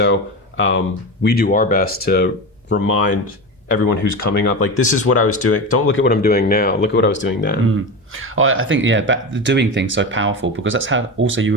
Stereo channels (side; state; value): both; normal; correlation 0.23